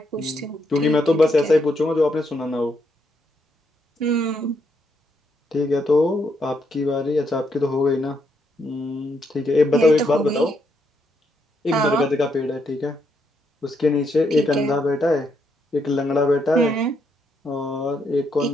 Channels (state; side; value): normal; both; correlation 0.77